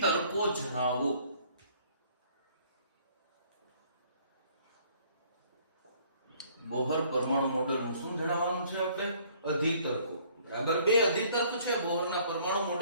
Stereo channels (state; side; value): inverted; both; correlation -0.59